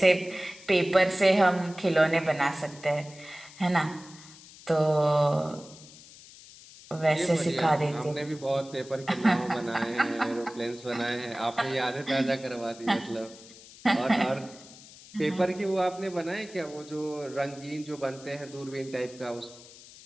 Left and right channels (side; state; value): left; noise; hiss, 20 dB below the sound